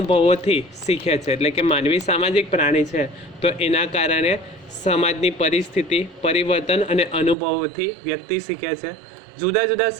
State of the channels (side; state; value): left; drops out; at 7.4 s